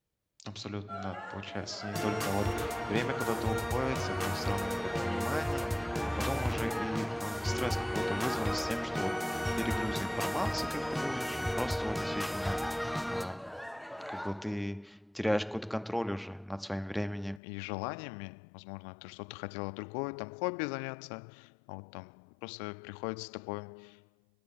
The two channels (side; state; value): right; drops out; at 17.4 s